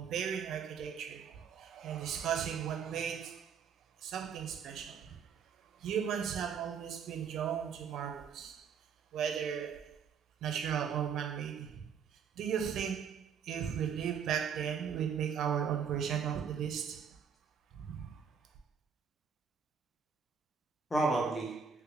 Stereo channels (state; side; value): quieter; left; 6.8 dB